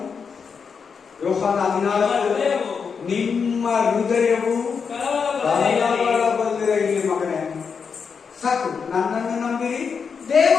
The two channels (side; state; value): right; quieter; 6.0 dB